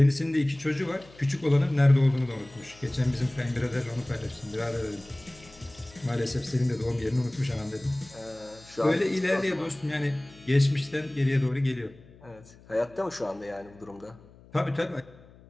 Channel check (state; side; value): noise; left; hum, 24 dB below the sound